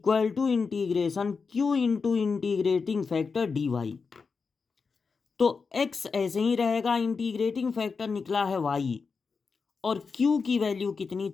to integration q into integrating factor dy। तो x ऐसे ही रहेगा, इंटीग्रेटिंग फैक्टर निकला है y और q की वैल्यू कितनी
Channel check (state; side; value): quieter; right; 5.0 dB